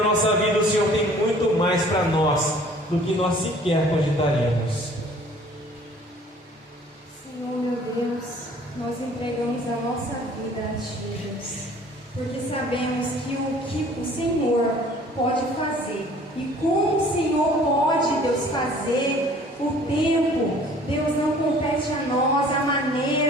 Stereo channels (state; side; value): normal; both; correlation 0.52